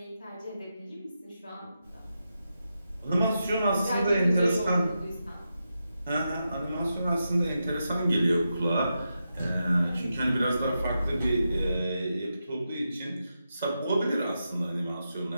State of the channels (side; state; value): both; inverted; correlation -0.88